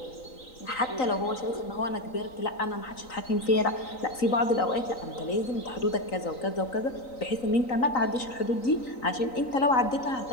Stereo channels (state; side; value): late; right; 3.9 ms